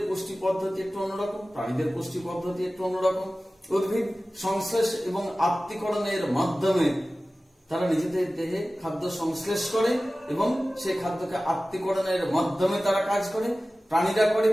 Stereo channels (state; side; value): normal; both; correlation 0.96